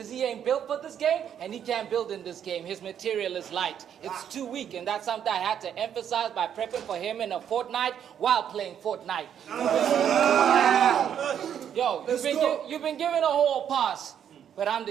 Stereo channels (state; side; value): quieter; left; 9.1 dB